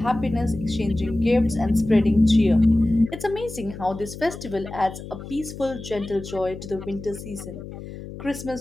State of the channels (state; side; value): noise; left; hum, 12 dB below the sound